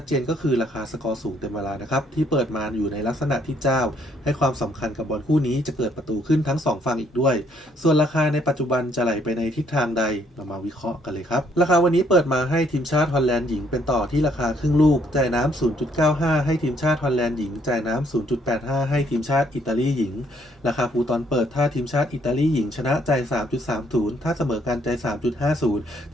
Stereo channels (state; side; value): normal; both; correlation 0.68